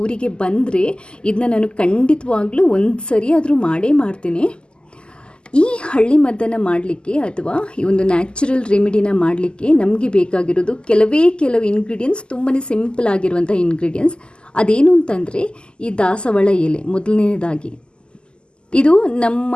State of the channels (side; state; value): right; late; 0.049 ms